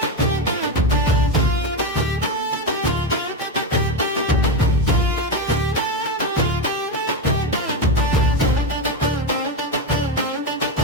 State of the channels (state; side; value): normal; both; correlation 0.13